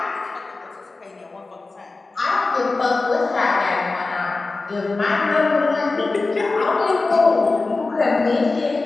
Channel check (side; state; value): right; quieter; 3.6 dB